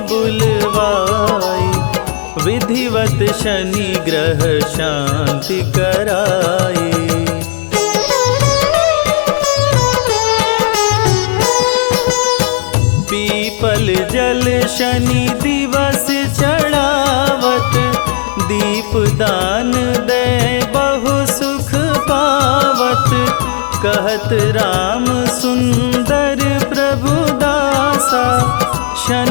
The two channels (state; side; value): silent; right; digital silence